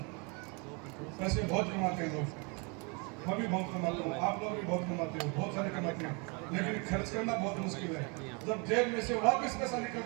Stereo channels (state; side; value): quieter; left; 32.1 dB